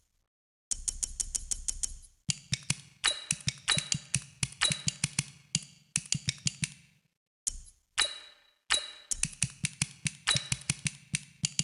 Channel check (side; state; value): both; identical; correlation 1.00